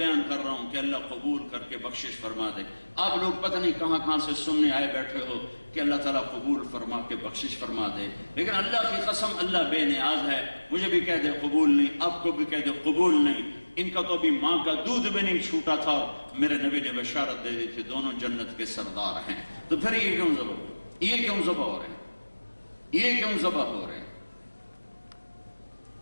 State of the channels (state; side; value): inverted; both; correlation -1.00